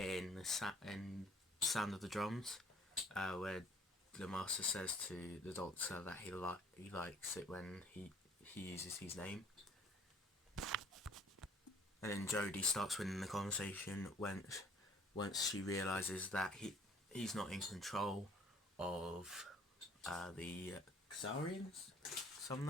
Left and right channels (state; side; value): normal; both; correlation 0.55